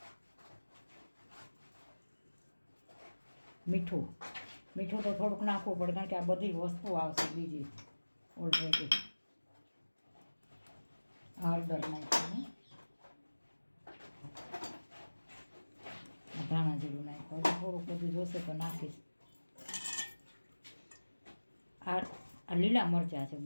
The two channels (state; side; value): inverted; both; correlation -1.00